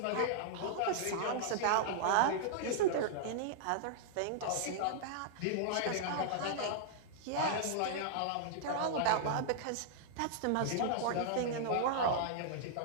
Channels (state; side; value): different; both; correlation -0.01